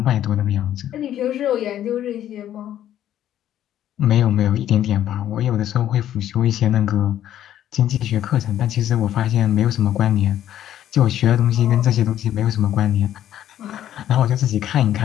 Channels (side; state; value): right; quieter; 11.5 dB